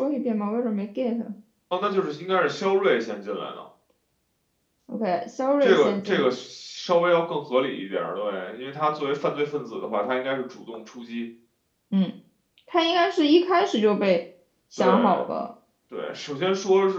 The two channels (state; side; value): identical; both; correlation 1.00